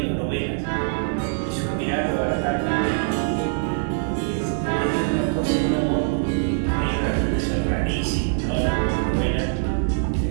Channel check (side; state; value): left; silent; digital silence